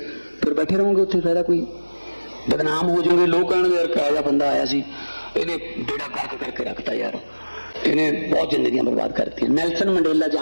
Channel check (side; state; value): both; inverted; correlation -1.00